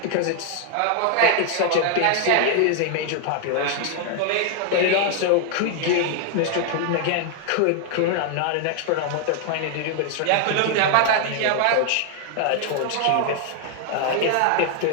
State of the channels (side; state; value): both; different; correlation 0.00